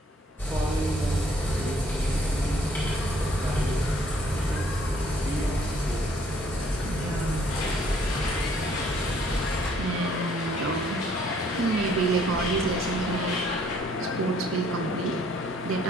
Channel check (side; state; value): both; normal; correlation 0.62